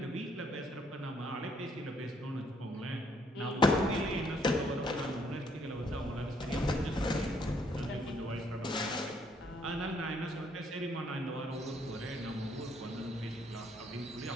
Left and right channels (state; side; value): normal; both; correlation 0.68